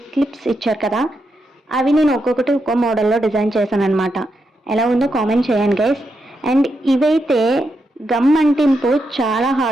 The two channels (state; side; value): normal; both; correlation 0.84